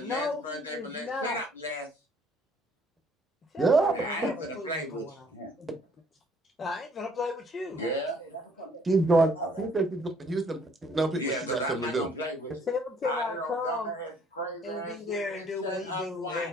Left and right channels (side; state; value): both; normal; correlation 0.61